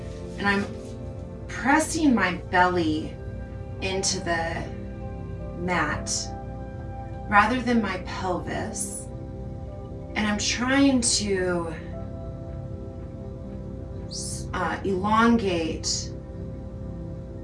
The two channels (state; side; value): identical; both; correlation 1.00